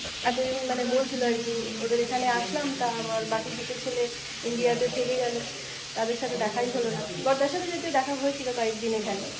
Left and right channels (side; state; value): both; identical; correlation 1.00